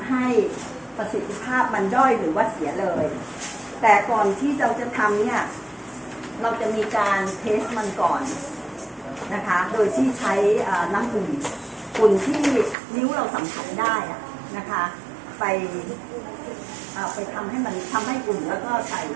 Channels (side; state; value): left; drops out; at 12.8 s